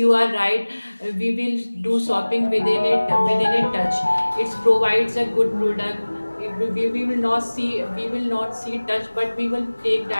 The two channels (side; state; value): both; inverted; correlation -1.00